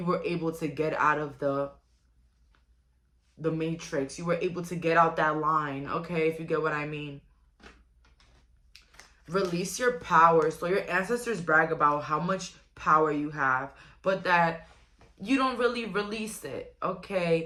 were able to get out of the matrix. You were able to get out that line, okay, if you get what I mean. Release your power. So your ancestors brag about how much power you have, but that you don't really release it,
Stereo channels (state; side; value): identical; both; correlation 1.00